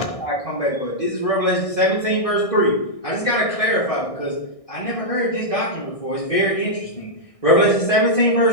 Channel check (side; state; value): right; late; 1.6 ms